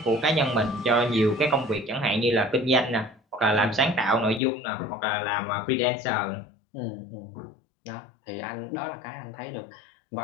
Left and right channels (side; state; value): right; drops out; at 4.4 s